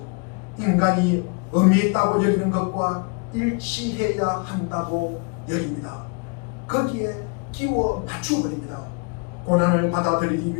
인간이 의미 있다고 여기는 것과 일치해야 한다고 여깁니다. 거기에 끼워 맞추어버립니다. 고난을 받아들이기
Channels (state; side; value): quieter; right; 34.7 dB